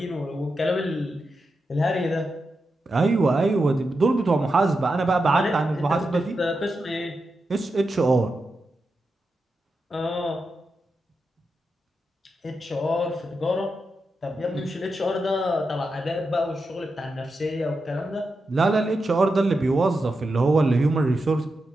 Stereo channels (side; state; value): both; normal; correlation 0.88